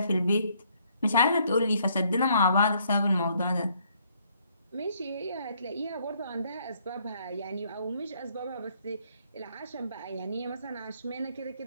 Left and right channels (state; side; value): inverted; both; correlation -0.67